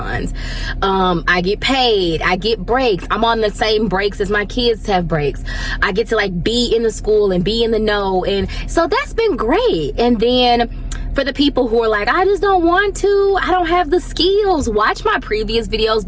I get paid. I get breaks. I'm on the same breaks as my kids have breaks. I get to like be in the school and be in the know. And so that's been great. And then for the people who are like, I just don't want to, I don't have the skills, watch my previous videos,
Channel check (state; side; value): identical; both; correlation 1.00